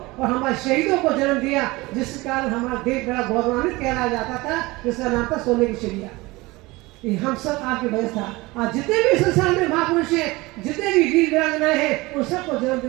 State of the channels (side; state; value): left; quieter; 21.9 dB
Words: और हमारे शहीदों को जन्म दिया, जिस कारण हमारा देश बड़ा गौरवान्वित कहलाया जाता था, जिसका नाम था सोने की चिड़िया। ये हम सब आपकी वजह था। आज जितने भी संसार में महापुरुष हैं, जितने भी वीर वीरांगनाएं हैं, उन सबको जन्म